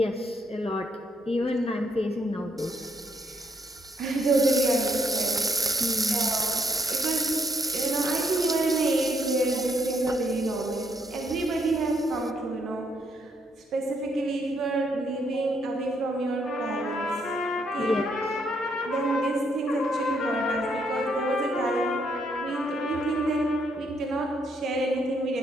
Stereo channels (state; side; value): normal; both; correlation 0.72